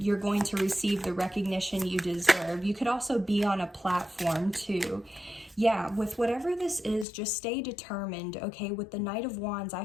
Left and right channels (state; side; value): drops out; right; at 7.1 s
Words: going to receive the recognition you deserve. You could also be on a platform too. yeah, with whatever this is, just stay determined, okay? With the Knight of Wands, I